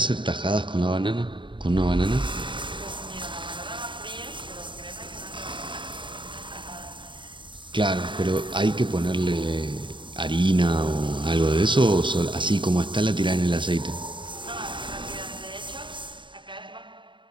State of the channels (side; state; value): left; late; 0.23 ms